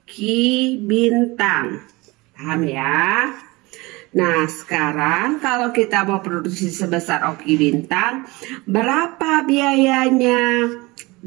Ki Bintang. Paham ya? Nah, sekarang kalau kita mau produksi sebesar Oki Bintang, berapa biayanya?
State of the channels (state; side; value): quieter; left; 23.1 dB